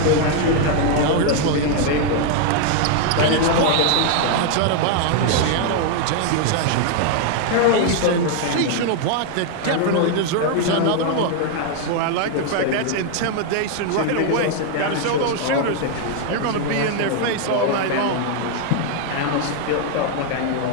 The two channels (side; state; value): both; different; correlation 0.00